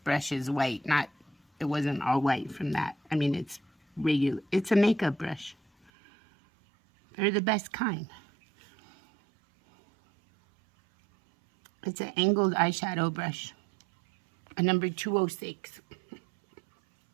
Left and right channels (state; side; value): drops out; left; at 5.9 s